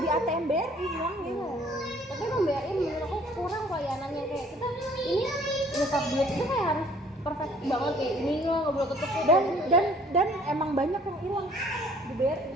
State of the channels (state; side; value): normal; both; correlation 0.57